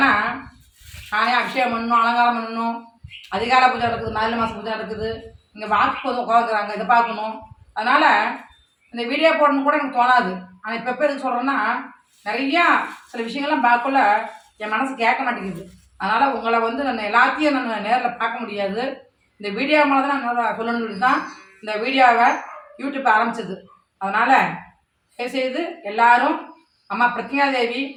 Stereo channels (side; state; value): both; identical; correlation 1.00